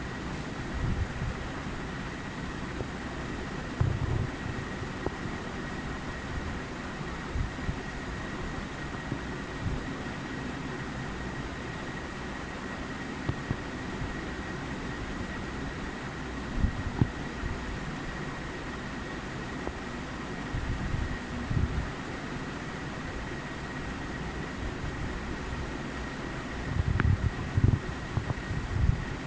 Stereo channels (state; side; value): identical; both; correlation 1.00